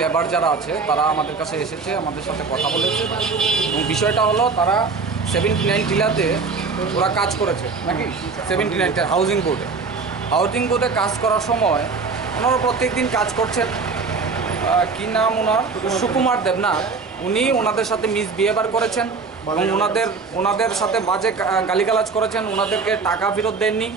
লেবার যারা আছে তারা আমাদের কাছে এসেছে, আমাদের সাথে কথা বলেছে এবং বিষয়টা হলো তারা 79 টিলাতে ওরা কাজ করেছে নাকি 79 হাউজিং বোর্ডে কাজ করার সময় ওনারা প্রত্যেক দিন কাজ করছেন। কী নাম ওনার? সুকুমার দেবনাথ। উনি ওনাদের সাথে মিসবিহেভিয়ার করেছেন এবং ওনাদের সাথে বাজে গালিগালাজ করেছেন, ওনাদেরকে টাকা ফেরত দেননি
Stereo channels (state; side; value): quieter; left; 4.6 dB